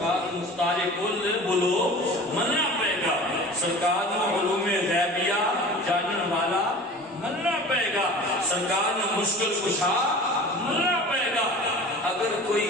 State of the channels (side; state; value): both; normal; correlation 0.40